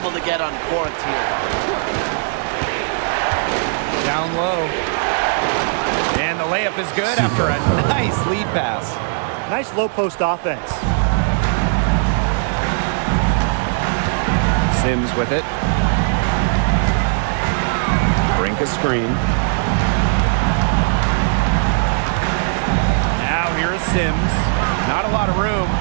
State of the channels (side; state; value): left; silent; digital silence